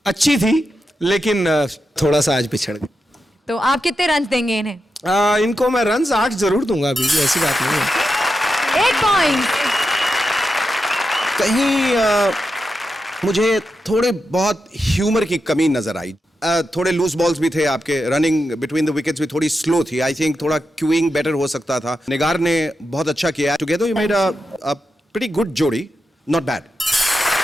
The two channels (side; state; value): both; normal; correlation 0.88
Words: अच्छी थी, लेकिन थोड़ा सा आज पिछड़ गए। तो आप कितने रन देंगे इन्हें? इनको मैं रन्स 8 जरूर दूंगा, अभी भी ऐसी बात नहीं है। 8 पॉइंट। कहीं मुझे थोड़े बहुत ह्यूमर की कमी नजर आई। थोड़े लूज बॉल्स भी थे आपके, रनिंग बिटवीन द विकेट्स भी थोड़ी स्लो थी। आई थिंक थोड़ा क्यूइंग बेटर हो सकता था। निगार ने बहुत अच्छा किया। Together you made a pretty good जोड़ी, not bad.